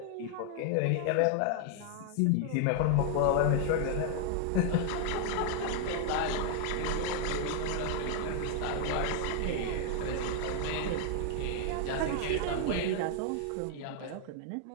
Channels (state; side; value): different; both; correlation 0.00